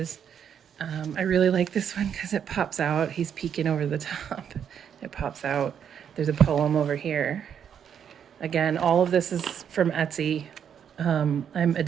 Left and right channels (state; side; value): quieter; left; 8.3 dB